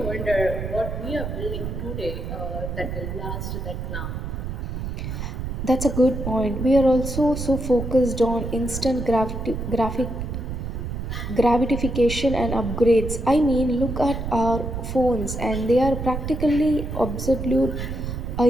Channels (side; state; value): right; noise; rumble, 5 dB below the sound